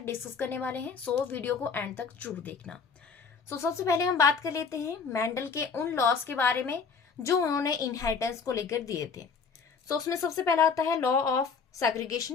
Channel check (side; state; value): right; quieter; 5.6 dB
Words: डिस्कस करने वाले हैं। सो वीडियो को एंड तक जरूर देखना। सबसे पहले हम बात कर लेते हैं मेंडल के उन लॉस के बारे में जो उन्होंने इनहेरिटेंस को लेकर दिए थे। उसमें सबसे पहला आता है लॉ ऑफ